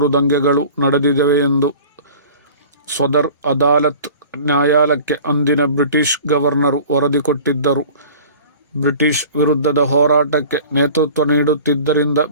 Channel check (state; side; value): inverted; both; correlation -0.43